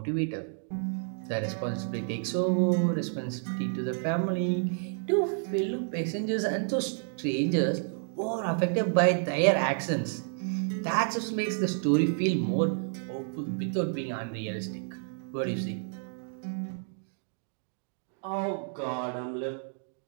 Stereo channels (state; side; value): silent; left; digital silence